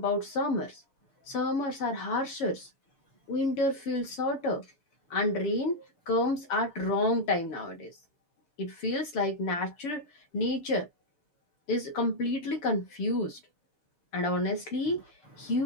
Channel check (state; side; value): late; right; 7.2 ms